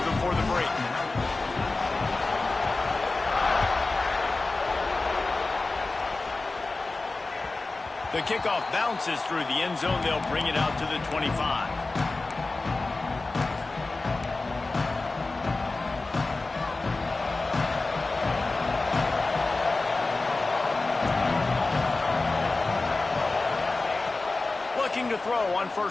before the break. The kickoff bounces through the end zone. They'll bring it out to the 25. Pitching to throw on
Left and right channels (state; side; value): quieter; right; 3.4 dB